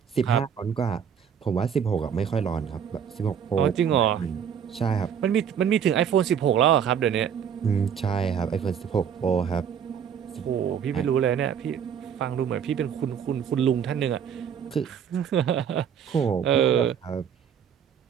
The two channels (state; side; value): quieter; left; 8.0 dB